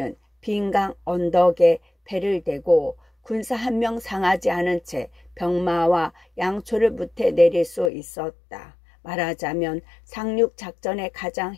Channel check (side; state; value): right; drops out; at 7.9 s